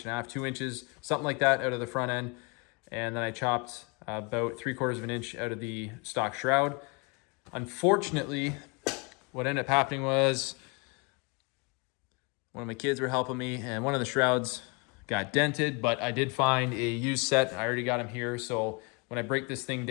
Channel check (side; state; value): right; quieter; 30.5 dB